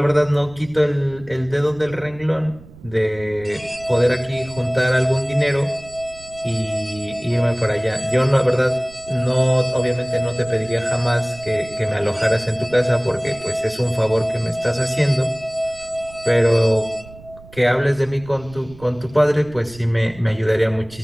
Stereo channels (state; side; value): noise; right; rumble, 20 dB below the sound